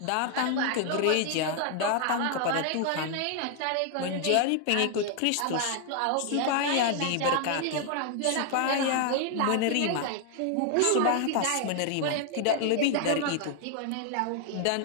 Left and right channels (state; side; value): different; both; correlation 0.00